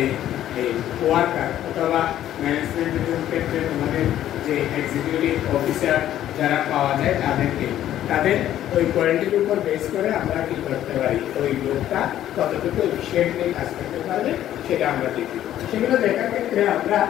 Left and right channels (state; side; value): quieter; right; 12.1 dB